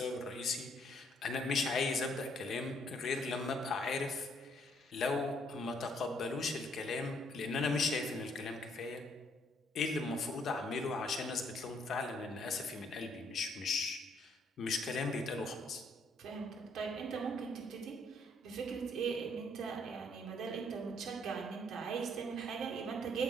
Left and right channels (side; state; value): both; normal; correlation 0.68